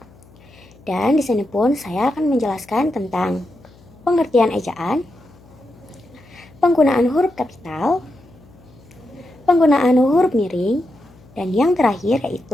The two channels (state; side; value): noise; left; hum, 26 dB below the sound